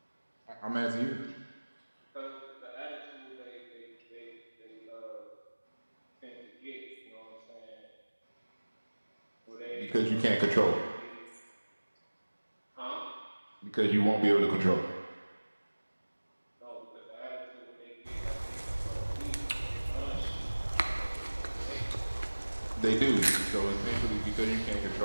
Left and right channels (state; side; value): inverted; both; correlation -1.00